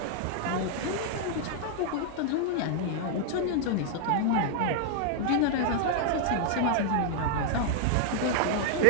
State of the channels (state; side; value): different; both; correlation 0.00